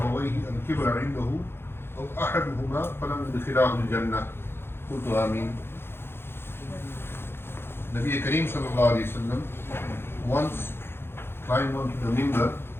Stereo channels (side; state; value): right; late; 0.11 ms